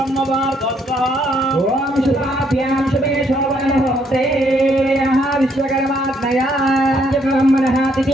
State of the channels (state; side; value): normal; both; correlation 0.70